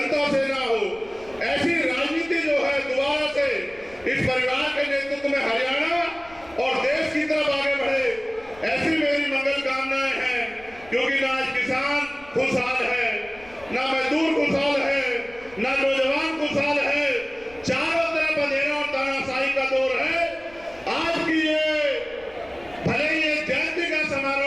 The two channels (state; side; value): noise; left; rumble, 24 dB below the sound